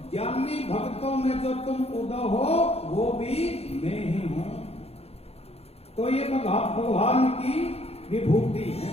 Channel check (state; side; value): late; right; 0.29 ms